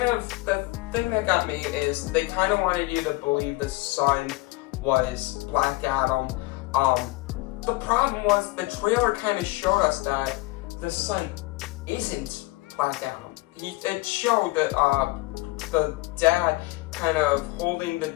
thing that got me is they kind of wanted you to believe the sun was Black Adam. The problem was the trailer kind of showed us that the sun isn't Black Adam. It showed that the dad kind of holding the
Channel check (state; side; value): quieter; right; 20.8 dB